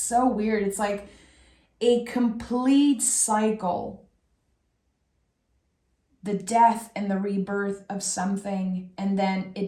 weird. It's like a complete cycle. The death and the rebirth of something, and then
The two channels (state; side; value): identical; both; correlation 1.00